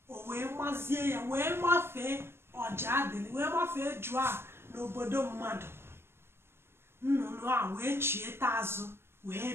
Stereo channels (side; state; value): left; late; 0.12 ms